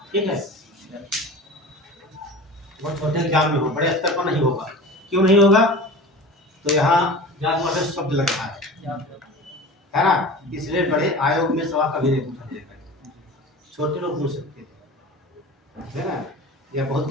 ठीक है। बहुत छोटे एग्जाम में हो, बड़े स्तर पर नहीं होगा। क्यों नहीं होगा? तो यहाँ जात वाले शब्द लग रहा है ना, इसलिए बड़े आयोग में सवाल कभी नहीं पूछा जाएगा, छोटे लोग पूछ सकते हैं, है ना। या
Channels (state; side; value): normal; both; correlation 0.36